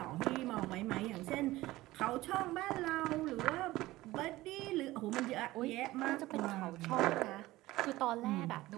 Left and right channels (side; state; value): left; quieter; 17.8 dB